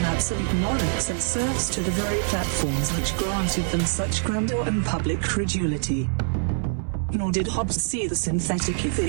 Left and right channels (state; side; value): silent; left; digital silence